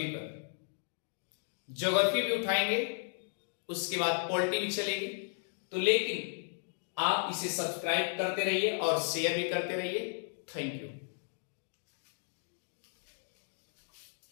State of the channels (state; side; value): silent; right; digital silence